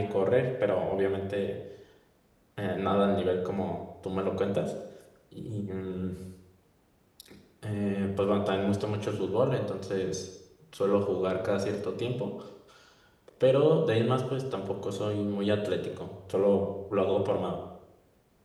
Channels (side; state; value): both; identical; correlation 1.00